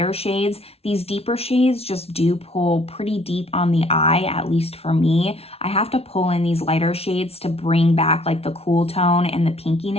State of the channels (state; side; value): late; right; 0.30 ms